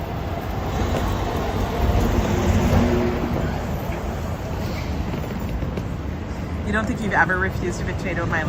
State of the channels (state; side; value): identical; both; correlation 1.00